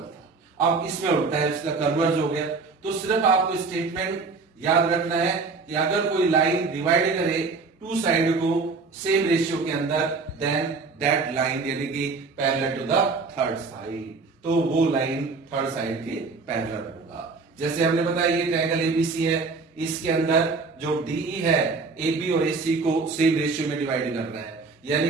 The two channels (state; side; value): quieter; left; 4.3 dB